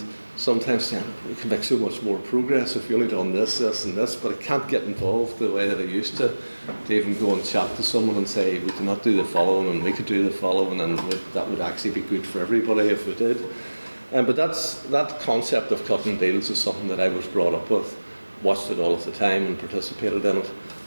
sometimes we can make so much more progress if you only done this and this, but I can't get involved the way that I used to even go and chat to someone and say, we cannot do the following and we could do the following, and that would actually be good for everybody if we did. But that concept of cutting deals is something that I was brought up with, watched it all of the time and participated in it,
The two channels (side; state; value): both; inverted; correlation -1.00